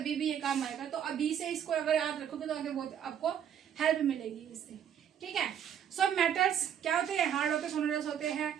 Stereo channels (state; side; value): quieter; left; 9.1 dB